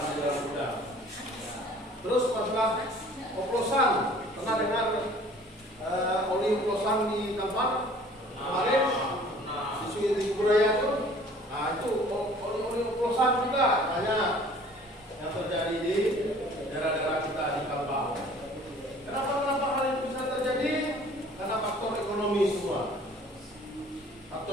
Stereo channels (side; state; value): both; normal; correlation 0.51